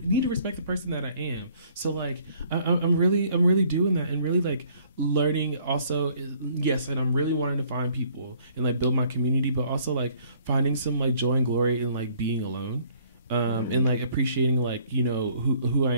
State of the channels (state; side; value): inverted; both; correlation -0.60